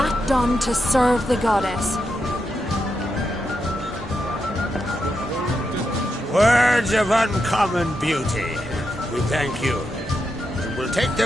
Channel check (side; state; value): both; normal; correlation 0.85